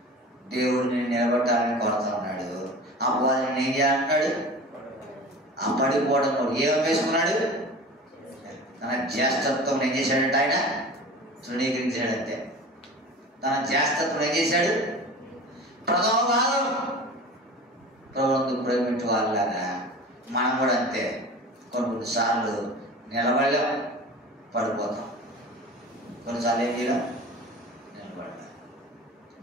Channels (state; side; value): normal; both; correlation 0.37